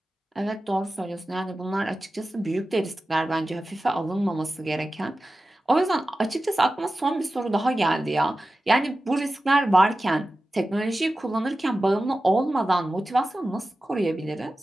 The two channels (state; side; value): normal; both; correlation 0.94